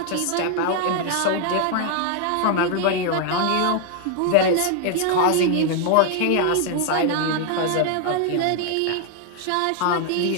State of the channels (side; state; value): both; different; correlation 0.00